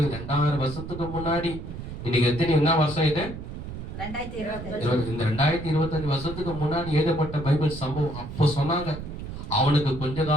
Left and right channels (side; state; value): right; noise; rumble, 9 dB below the sound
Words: 2000 வருஷத்துக்கு முன்னாடி, இன்னைக்கு என்ன வருஷம் இது? இந்த 2025 வருஷத்துக்கு முன்னாடி எழுதப்பட்ட பைபிள் சம்பவம் அப்போ சொன்னாங்க. அவனுக்கு கொஞ்ச